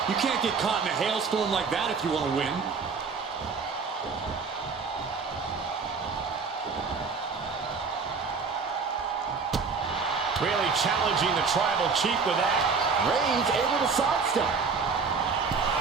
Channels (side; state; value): left; quieter; 5.0 dB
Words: You can't get caught in a hailstorm like that if you want to win. Really challenging the tribal chief with that. Reigns able to sidestep.